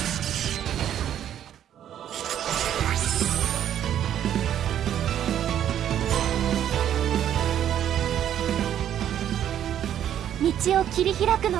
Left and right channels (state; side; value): quieter; left; 10.4 dB